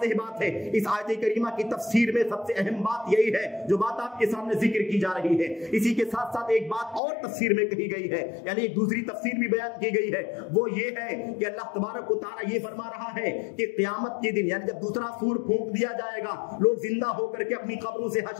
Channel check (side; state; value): right; drops out; at 7.0 s